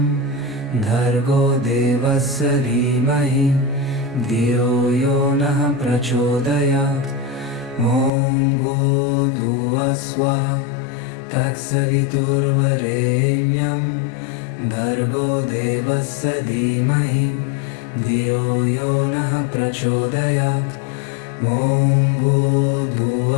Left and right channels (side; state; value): right; drops out; at 8.1 s